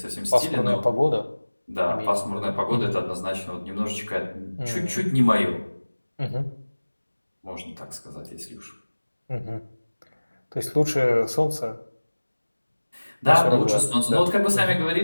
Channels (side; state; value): both; inverted; correlation -1.00